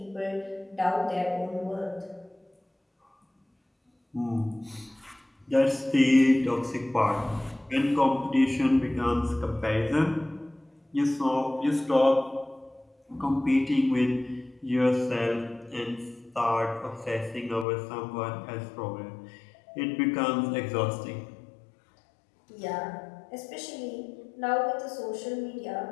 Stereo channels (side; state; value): right; drops out; at 17.7 s